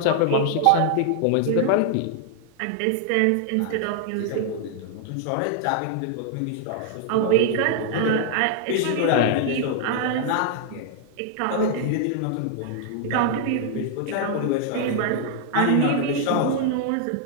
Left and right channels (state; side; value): different; both; correlation 0.00